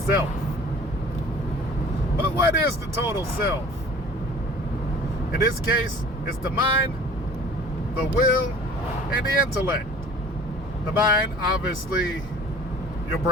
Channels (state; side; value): normal; both; correlation 0.47